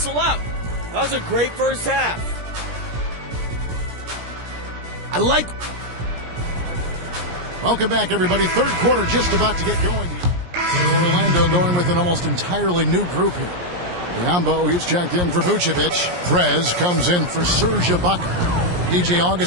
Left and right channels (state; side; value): late; left; 17 ms